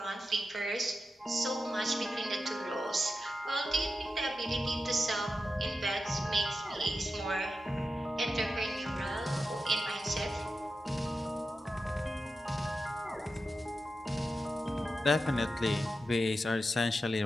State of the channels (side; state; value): both; normal; correlation 0.90